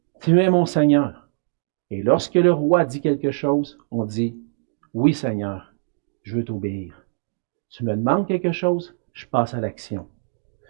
Tu es mon Seigneur ». Et lorsque le roi dit quelque chose, on dit « Oui, Seigneur, je veux t'obéir. Tu me demandes quelque chose, je passe à l'action.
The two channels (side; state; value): left; silent; digital silence